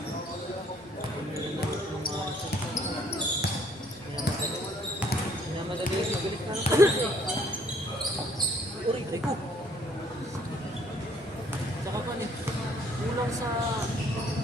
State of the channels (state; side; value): normal; both; correlation 0.62